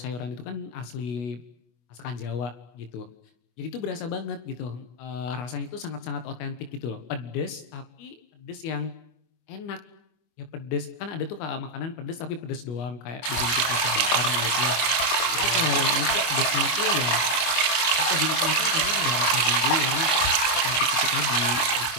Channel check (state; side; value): late; right; 24 ms